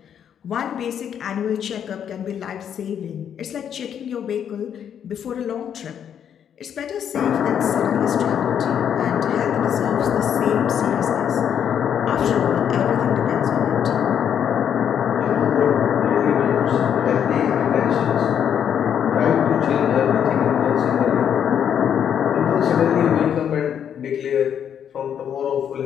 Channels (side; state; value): right; quieter; 8.8 dB